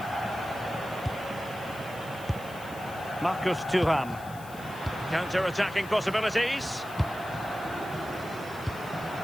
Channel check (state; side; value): noise; left; hiss, 19 dB below the sound